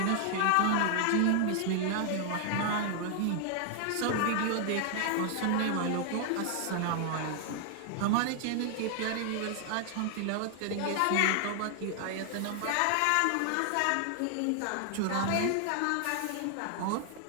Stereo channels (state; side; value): different; both; correlation 0.00